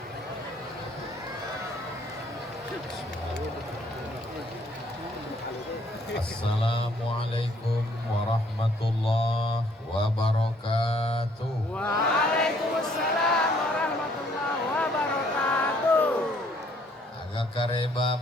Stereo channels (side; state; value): both; normal; correlation 0.63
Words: Assalamualaikum warahmatullahi wabarakatuh. Waalaikumsalam warahmatullahi wabarakatuh. Agak kareba